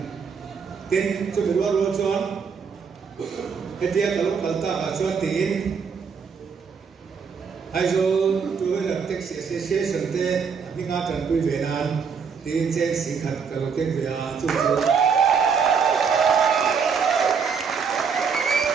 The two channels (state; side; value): quieter; left; 6.0 dB